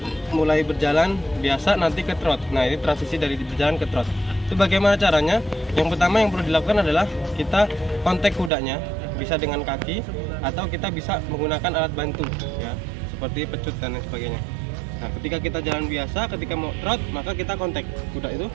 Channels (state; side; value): drops out; left; at 8.5 s